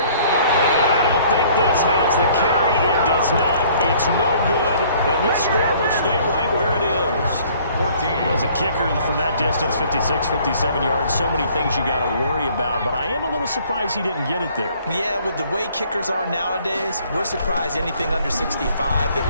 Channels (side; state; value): both; inverted; correlation -0.57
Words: And I don't think this has the carry. It does not. It's no good, and this score will stay right where it is. 14. As a kicker from that distance, 56, 57 yards, so many things you got to worry about, but I am a little surprised he didn't get it there. Yeah, with the way kickers are nowadays, we're surprised anything under 65 that